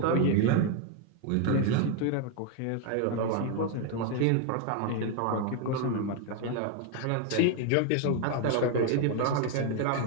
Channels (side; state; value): both; different; correlation 0.01